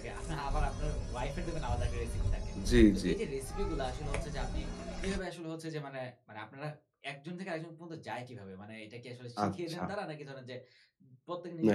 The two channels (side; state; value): both; identical; correlation 1.00